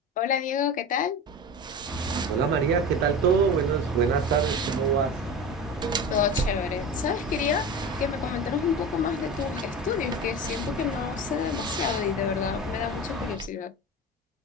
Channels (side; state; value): both; normal; correlation 0.29